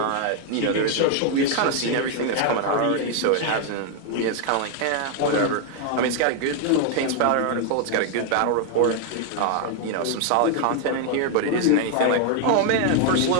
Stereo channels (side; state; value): both; different; correlation 0.00